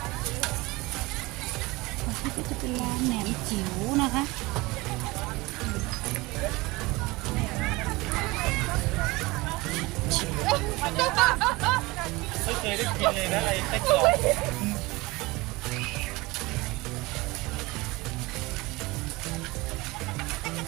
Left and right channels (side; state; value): left; quieter; 22.4 dB